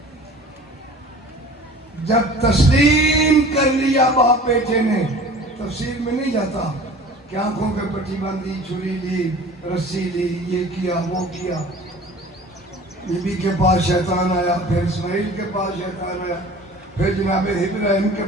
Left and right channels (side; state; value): both; normal; correlation 0.43